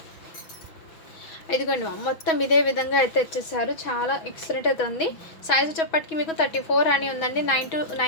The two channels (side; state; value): right; late; 6.2 ms